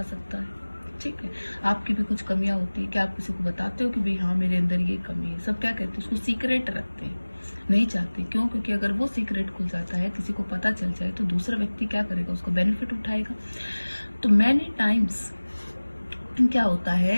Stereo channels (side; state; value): both; inverted; correlation -1.00